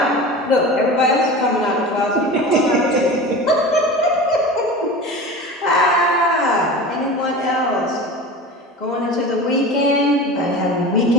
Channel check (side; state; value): both; normal; correlation 0.33